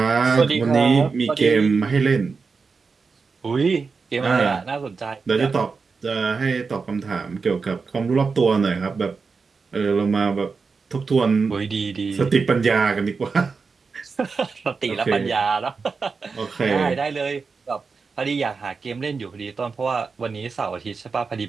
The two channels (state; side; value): quieter; left; 4.8 dB